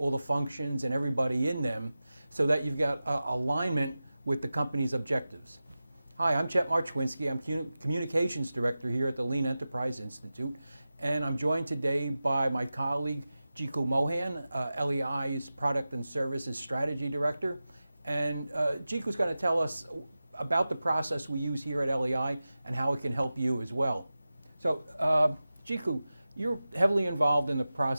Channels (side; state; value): both; inverted; correlation -0.94